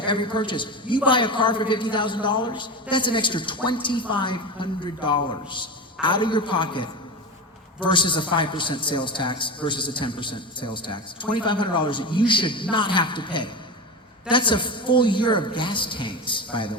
every purchase. You buy a car for $50,000, that's an extra $2,500 out of your pocket versus a 5% sales tax versus a 10% sales tax. $2,500 that you should not have to pay. That's a full year of gas tanks, by the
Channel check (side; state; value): both; normal; correlation 0.23